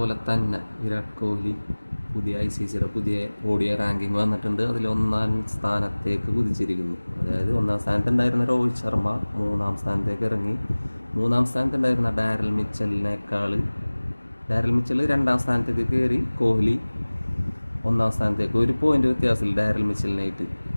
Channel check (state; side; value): inverted; both; correlation -1.00